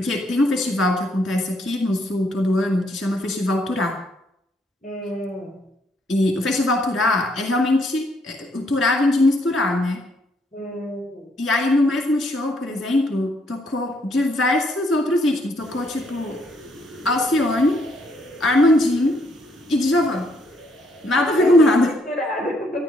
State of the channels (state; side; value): normal; both; correlation 0.71